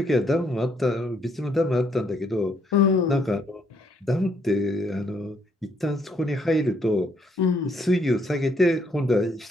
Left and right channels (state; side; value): normal; both; correlation 0.70